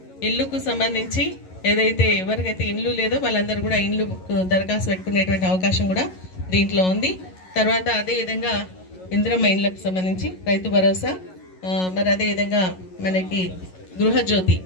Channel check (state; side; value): late; right; 11 ms